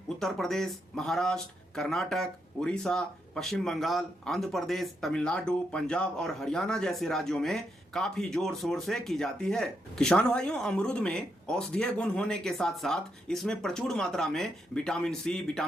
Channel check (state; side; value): normal; both; correlation 0.80